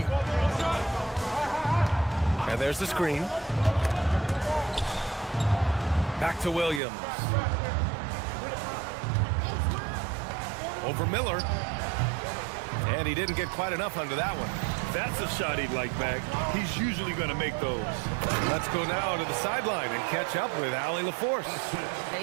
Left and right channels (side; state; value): left; drops out; at 6.8 s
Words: And there's the screen. Back to Williams. Over Miller. And he didn't get quite enough under that one. That's a shot he'd like back. He's usually going to make those. Let's go now to the sideline and catch up with Allie LaForce.